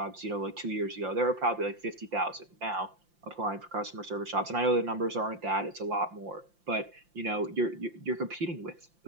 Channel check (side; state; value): left; late; 5.7 ms